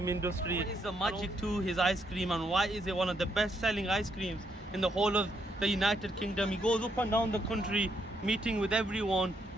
industry. What is the magic to his ice cream and why is it one of the best selling ice creams in the whole of the United Kingdom? He goes up and down the country meeting with everyone,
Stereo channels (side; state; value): both; normal; correlation 0.75